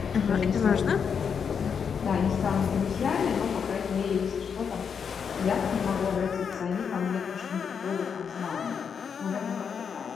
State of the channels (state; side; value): quieter; right; 6.7 dB